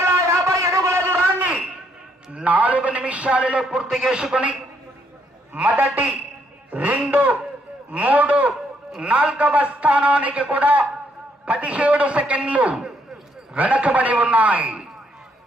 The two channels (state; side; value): normal; both; correlation 0.72